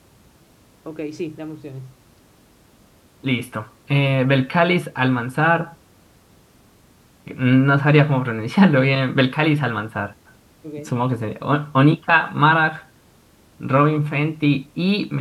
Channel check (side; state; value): both; identical; correlation 1.00